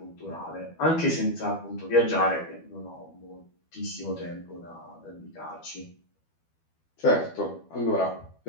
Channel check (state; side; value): late; right; 12 ms